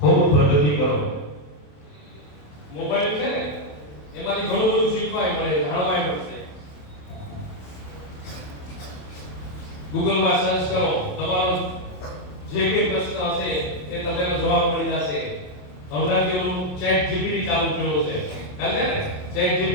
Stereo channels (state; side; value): late; right; 27 ms